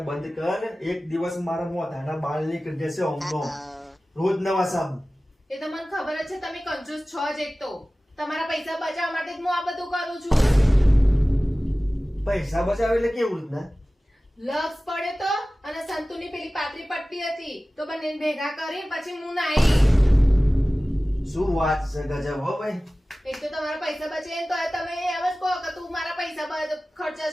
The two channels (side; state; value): both; normal; correlation 0.97